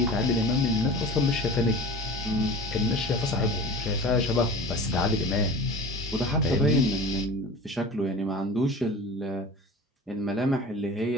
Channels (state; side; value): normal; both; correlation 0.38